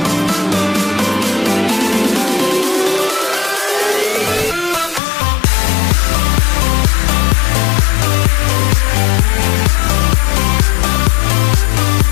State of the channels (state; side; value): drops out; right; at 5.0 s